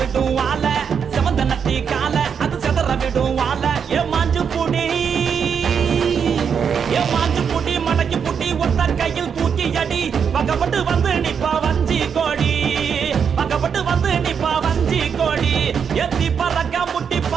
வாழ செவந்த நத்தி கால அது செதற விடும் வாழ ஏ மாஞ்சு புடி மடக்கி புட்டி ஒத்த கையில் தூக்கி அடி பக்கப்பட்டு வந்து நிப்பா வஞ்சி கோடி பக்கப்பட்டு வந்து நிப்பா வஞ்சி கோடி எத்தி பறக்க முட்டி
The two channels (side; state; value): left; quieter; 7.0 dB